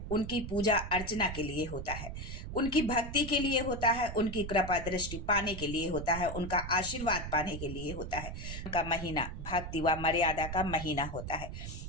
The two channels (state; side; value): noise; right; rumble, 7 dB below the sound